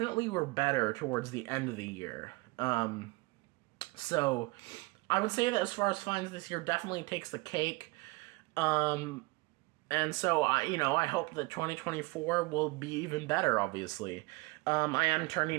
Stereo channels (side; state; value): left; quieter; 24.0 dB